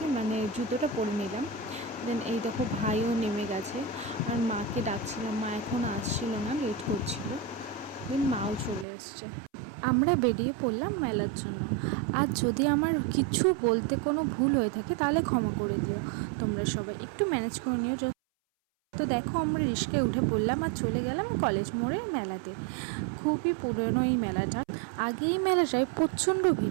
মানে জুতোটা পরে নিলাম। দেন এই দেখো ভাইও নেমে গেছে, আর মাকে ডাকছিলাম, মা এখন আসছিল না, লেট করছিল। দেন মাও চলে এসছে। আমরা বেরিয়ে পড়লাম মেলার জন্য। আর যদি আমার কিছু বলতে কোনো ভুল হয়ে থাকে তাহলে ক্ষমা করে দিও, তোমরা সবাই একটু ম্যানেজ করে নিও। তো দেখো আমরা রিস্কায় উঠে পড়লাম আর চলে গেলাম কলেজ মোড়ের মেলাতে। খুবই পুরনো এই মেলাটা। আগে এই মেলাটায় প্রচণ্ড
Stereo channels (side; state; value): left; drops out; at 8.8 s